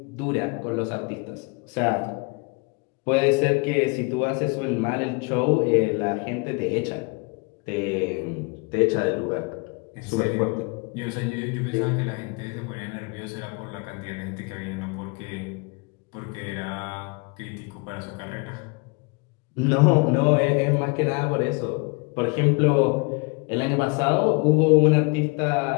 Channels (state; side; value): quieter; right; 30.2 dB